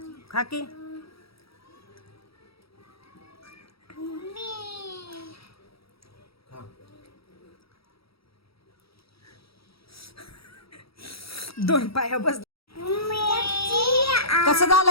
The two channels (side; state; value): right; late; 0.76 ms